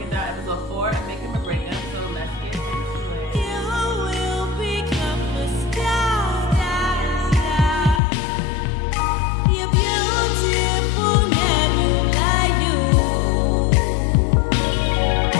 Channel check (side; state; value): right; drops out; at 8.0 s